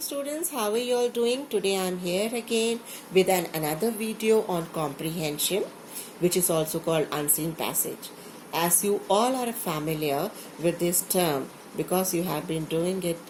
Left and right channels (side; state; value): both; identical; correlation 1.00